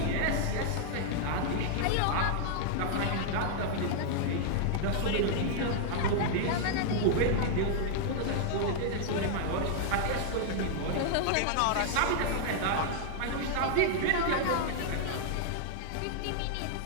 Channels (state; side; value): different; both; correlation -0.01